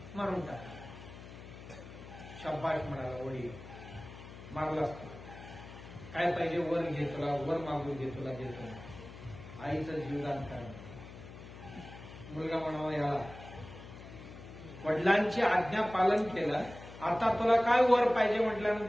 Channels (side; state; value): left; noise; hum, 15 dB below the sound